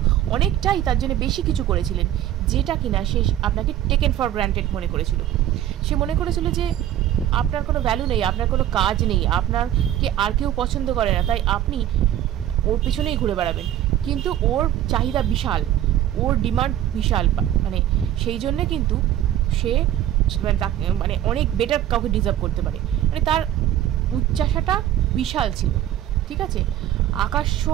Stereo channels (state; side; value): quieter; left; 11.9 dB